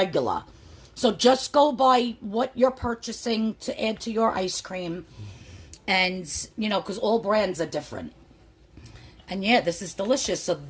So just go by what you're purchasing to add to your ice cream. And, because all brands are different. And yeah, this is delicious. So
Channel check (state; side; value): identical; both; correlation 1.00